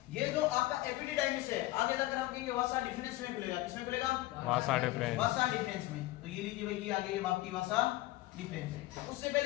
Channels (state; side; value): quieter; right; 17.7 dB